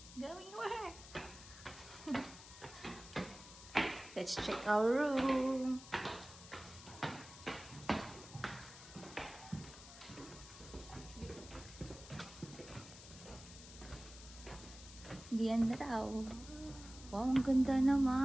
going where? Let's check our room. Diyan na daw. Wow, ang ganda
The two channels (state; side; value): noise; left; hiss, 16 dB below the sound